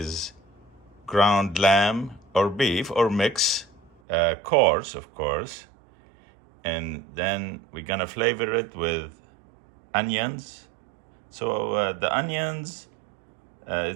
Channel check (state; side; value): drops out; left; at 3.9 s